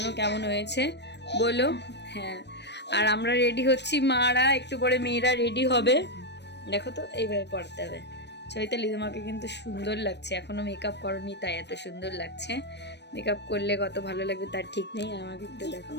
কেমন হয়েছে বলো? হ্যাঁ, আর আমরা রেডি হচ্ছি, মারা একটু পরে মেয়েরা রেডি হবে। দেখো তো এইভাবে পড়তে হবে। চৈতালি তোমাকে কিন্তু সুন্দর লাগছে, এখনো মেকআপ করনি তাই এত সুন্দর লাগছে। মেকআপ করলে কত ভালো লাগবে তার ঠিক নেই। আমাকে একটু দেখো।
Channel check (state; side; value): late; right; 0.50 ms